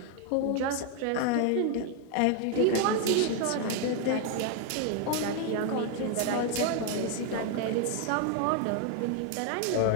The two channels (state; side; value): different; both; correlation 0.01